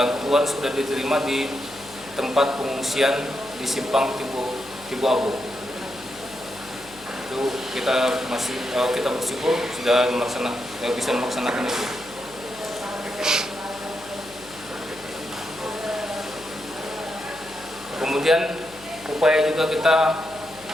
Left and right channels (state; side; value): noise; left; hum, 23 dB below the sound